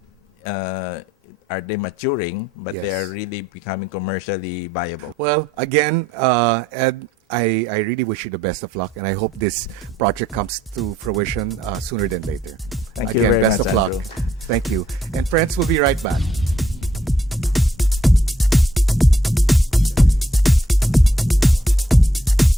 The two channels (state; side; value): normal; both; correlation 0.69